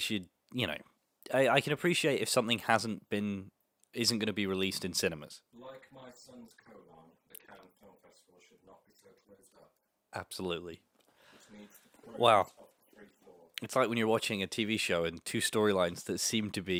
I can appreciate if something isn't going to be released in cinemas. Like my son's colon, the Cannes Film Festival should not be so closed up. Absolutely. Which needs the Wow. progress of the free floor. It's like when you're watching a TV show and two storylines that seem to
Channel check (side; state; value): both; identical; correlation 1.00